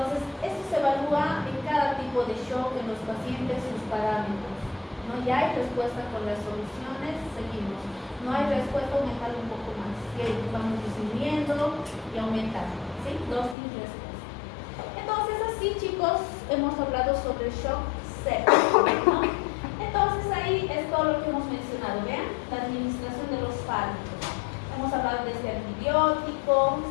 esto se evalúa en cada tipo de shock en los pacientes, sus parámetros, ¿no? Ya hay respuesta con las soluciones, seguimos. No hay respuesta, aumentar un poco más. Y ahí vamos disminuyendo y aumentando, ¿sí? Dosis-respuesta. Entonces, así, chicos, hemos hablado sobre el shock séptico, ¿no? Entonces, ahí es todo lo que hemos mencionado, ¿vean? La administración de los fármacos. Hemos hablado de este antibiótico,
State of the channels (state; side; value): drops out; right; at 13.6 s